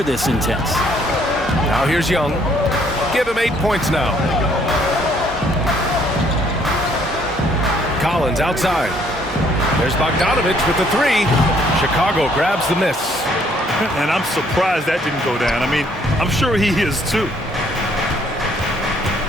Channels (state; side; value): normal; both; correlation 0.64